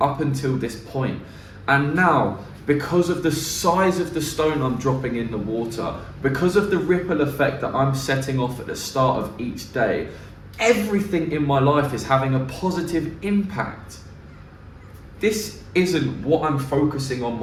up until this point. And now, because of the size of the stone I'm dropping in the water, because of the ripple effect that I'm setting off at the start of each day, everything in my life is having a positive impact. This isn't what I'm focusing on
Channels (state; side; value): identical; both; correlation 1.00